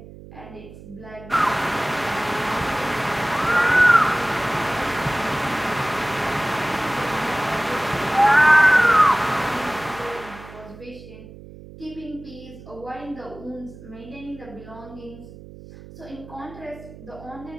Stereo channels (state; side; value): noise; right; hum, 17 dB below the sound